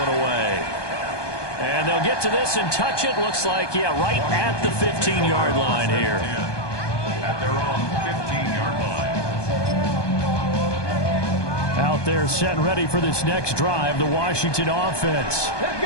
away. And they'll get to this and touch it. Looks like, yeah, right at the 15-yard line here. At their own 15-yard line. Out there set and ready for this next drive, the Washington offense. Let's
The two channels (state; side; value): late; right; 1.2 ms